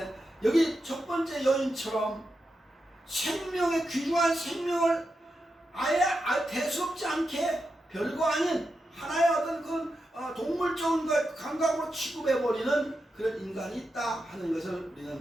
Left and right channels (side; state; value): both; normal; correlation 0.88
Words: 여기 첫 번째 여인처럼 생명의 귀중한 생명을 아예 대수롭지 않게 별거 아닌 하나의 어떤 그 동물적인 것 감각으로 취급해버리는 그런 인간이 있다 하는 것을